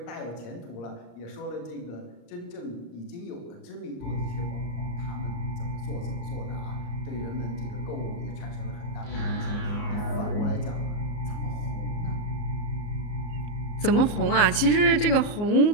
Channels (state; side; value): late; right; 34 ms